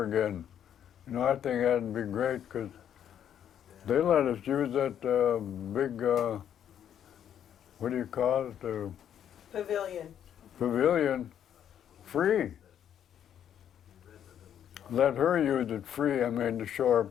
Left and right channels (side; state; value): right; quieter; 9.6 dB